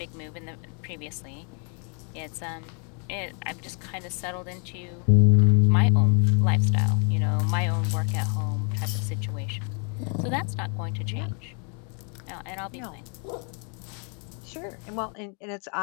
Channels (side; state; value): right; quieter; 39.7 dB